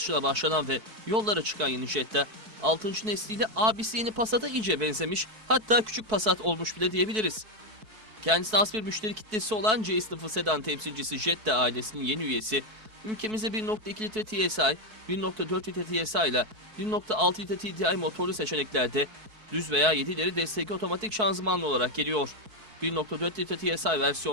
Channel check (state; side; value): late; left; 4.6 ms